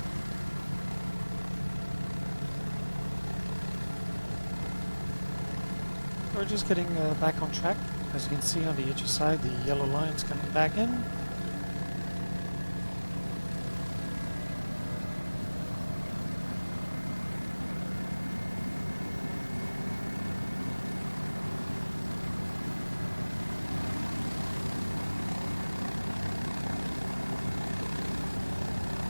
We're just getting back on track. As you can see on the HE side, the yellow line's coming back in.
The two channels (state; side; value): inverted; both; correlation -1.00